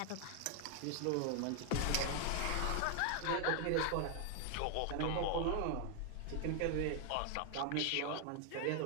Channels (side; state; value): both; different; correlation 0.00